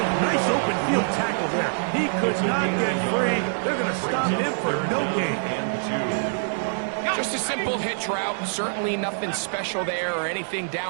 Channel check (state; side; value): silent; left; digital silence